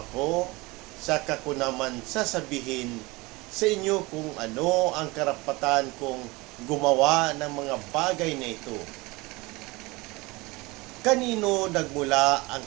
saka ko naman sasabihin sa inyo kung ano ang karapatan kong gumawa ng mga bagay na ito. Kanino nagmula ang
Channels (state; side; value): quieter; left; 23.3 dB